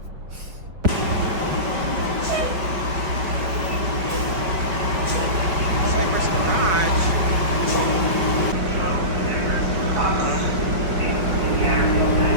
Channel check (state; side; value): late; left; 5.6 ms